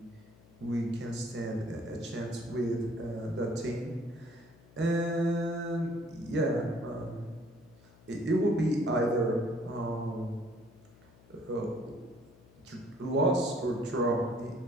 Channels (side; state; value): left; noise; hum, 25 dB below the sound